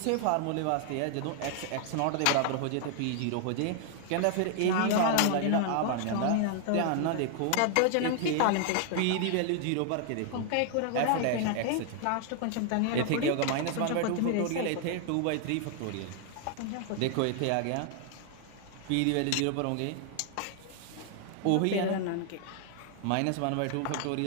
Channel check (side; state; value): both; different; correlation 0.00